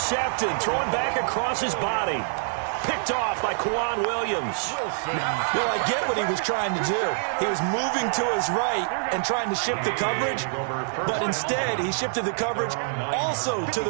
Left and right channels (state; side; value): silent; left; digital silence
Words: Thrown back across his body. Picked off by Kwan Williams. Well, I get what he was trying to do. He was moving to his right and trying to shift the coverage, but instead he shifted the coverage also to